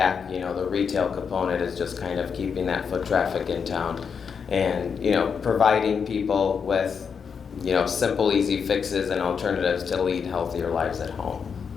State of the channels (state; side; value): quieter; right; 6.3 dB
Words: the retail component is just kind of keeping that foot traffic in town and, providing people with, simple, easy fixes and alternatives to lead healthier lives at home.